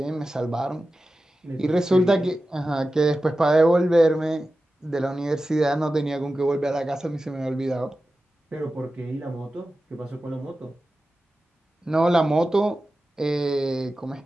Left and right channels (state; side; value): normal; both; correlation 0.94